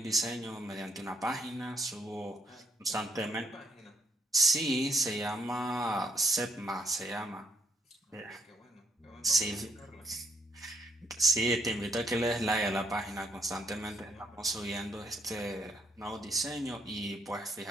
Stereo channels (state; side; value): normal; both; correlation 0.70